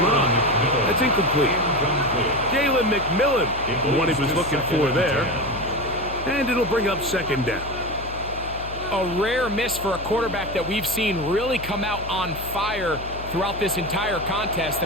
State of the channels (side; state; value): left; noise; hum, 12 dB below the sound